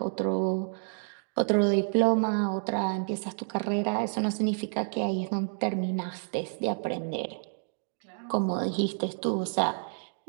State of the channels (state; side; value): silent; left; 58 dB below the other